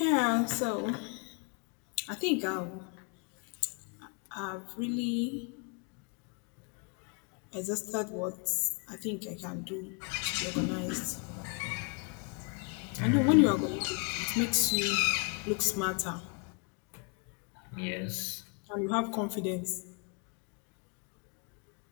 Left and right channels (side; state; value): right; quieter; 34.6 dB